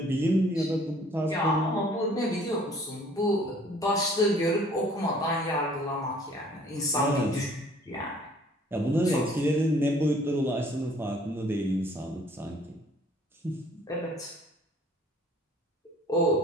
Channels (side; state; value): both; normal; correlation 0.56